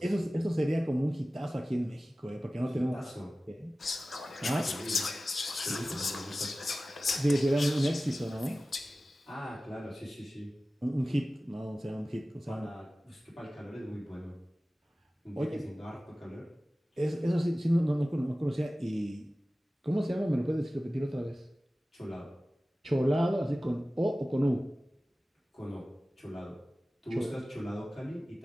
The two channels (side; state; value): both; normal; correlation 0.96